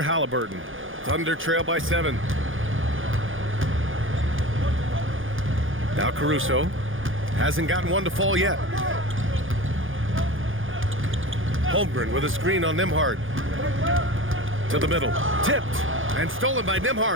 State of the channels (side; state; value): left; late; 0.58 ms